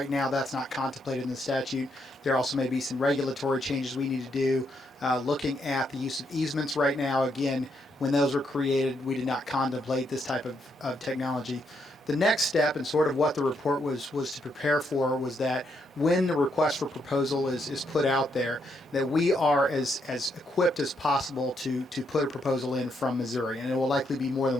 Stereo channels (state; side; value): normal; both; correlation 0.77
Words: now that's not contemplated in the statute. There also may be some regulatory changes we need to do. looking at the use of easements right now. Again, when those were created, we did not contemplate this type of technology. The next step, and sort of what the report was to prepare for, was that when the request for proposal is put out there, that we are as equipped as possible to put a proposal in from Missouri, and it will likely be more